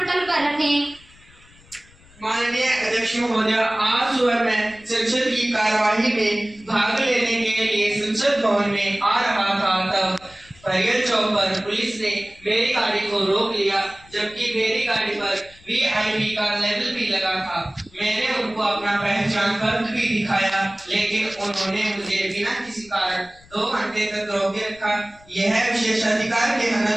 पर रखें। माननीय अध्यक्ष महोदय, आज सुबह मैं संसद की कार्यवाही में भाग लेने के लिए संसद भवन में आ रहा था, तब परियल चौक पर पुलिस ने मेरी गाड़ी को रोक लिया, जबकि मेरी गाड़ी पर VIP का लेबल भी लगा था। मैंने उनको अपना पहचान पत्र भी दिखाया, लेकिन उन्होंने मुझे बिना किसी कारण 2 घंटे तक रोके रखा। यह विशेषाधिकार के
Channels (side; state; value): left; noise; rumble, 26 dB below the sound